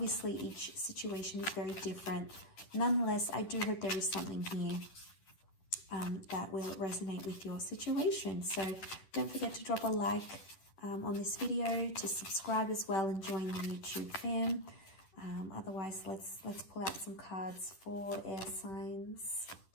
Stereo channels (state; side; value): late; right; 10 ms